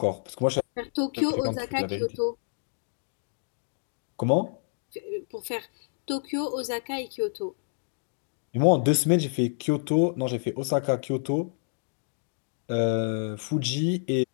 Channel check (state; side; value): silent; right; digital silence